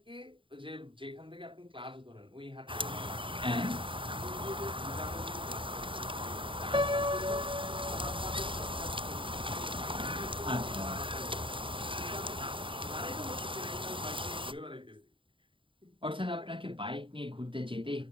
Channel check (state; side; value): late; left; 0.25 ms